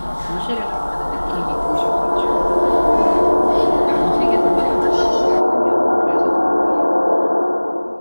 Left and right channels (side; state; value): both; inverted; correlation -1.00